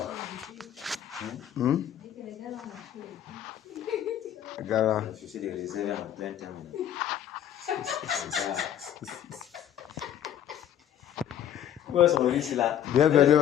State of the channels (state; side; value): quieter; right; 10.4 dB